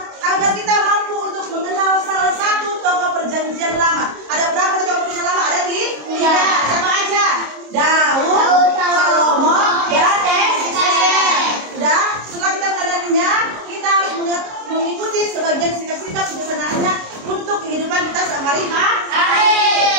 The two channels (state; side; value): late; left; 26 ms